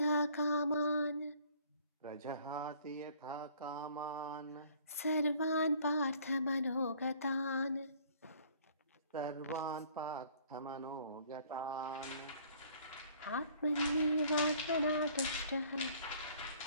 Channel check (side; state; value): both; inverted; correlation -0.56